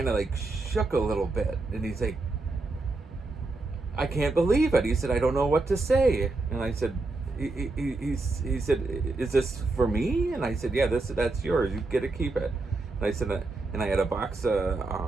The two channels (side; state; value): left; quieter; 3.3 dB